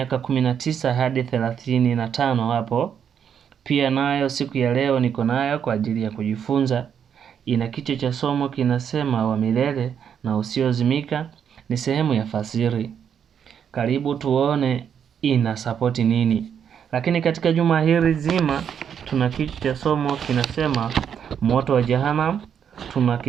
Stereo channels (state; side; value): quieter; left; 8.0 dB